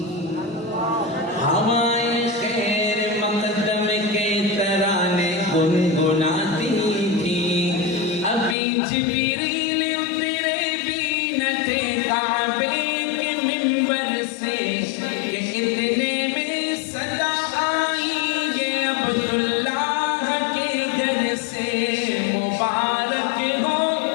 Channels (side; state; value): right; drops out; at 8.6 s